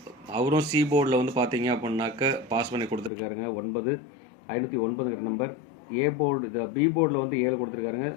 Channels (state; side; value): drops out; right; at 3.1 s